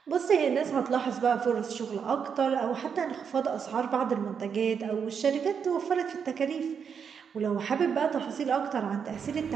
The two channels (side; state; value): left; quieter; 6.9 dB